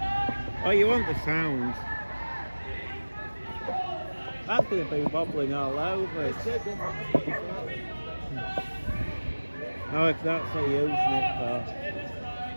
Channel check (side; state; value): both; inverted; correlation -1.00